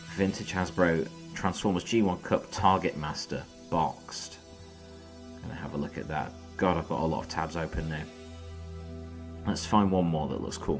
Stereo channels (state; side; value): identical; both; correlation 1.00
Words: Vintage Hasbro Transformers G1 Cup Target Master boxed. Gonna have a look at that. God, I've got a lot of tabs open now. Let's find one more that looks